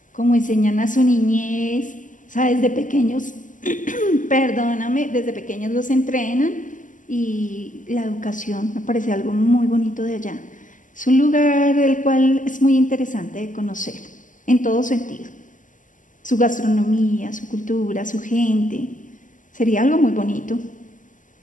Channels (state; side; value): late; right; 0.38 ms